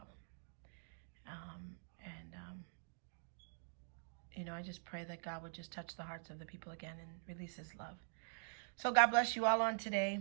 I just pray that God would just touch the hearts of the people again and release his love. So God bless you all on today.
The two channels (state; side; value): silent; left; digital silence